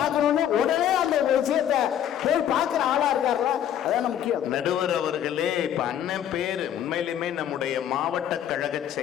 உடனே அந்த விஷயத்தை போய் பார்க்கிற ஆளா இருக்காருல, அதான் முக்கியம். நடுவர் அவர்களே, இப்ப அண்ணன் பேரு உண்மையிலுமே நம்முடைய மாவட்ட கழக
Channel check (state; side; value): quieter; right; 10.2 dB